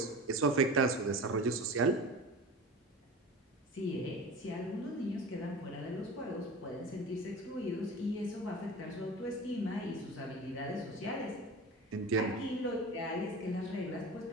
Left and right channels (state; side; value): normal; both; correlation 0.34